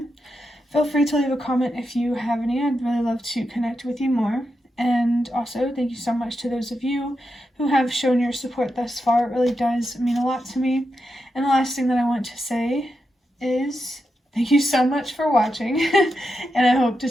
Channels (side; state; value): both; normal; correlation 0.87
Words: Feel free to leave a comment if you have any. I'd really love to connect with you more. And also, thank you so much to those of you who have shown your support thus far. It really does mean a lot to me. And the last thing that I want to say is thank you so much for watching, and I hope to